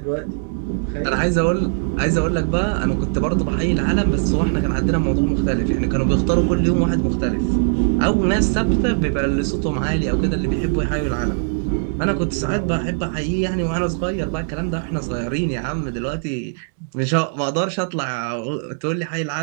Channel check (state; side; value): silent; left; digital silence